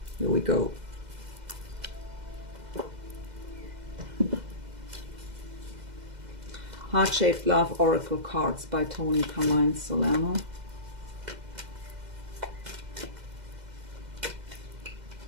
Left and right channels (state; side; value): late; left; 2.0 ms